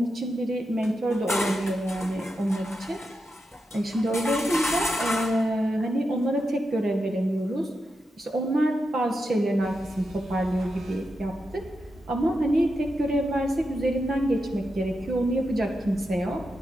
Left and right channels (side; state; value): both; normal; correlation 0.87